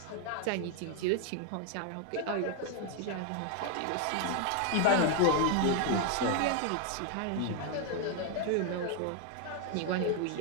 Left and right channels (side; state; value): both; different; correlation 0.01